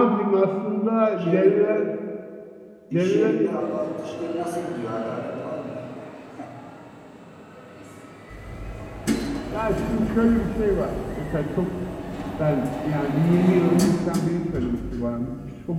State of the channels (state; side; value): identical; both; correlation 1.00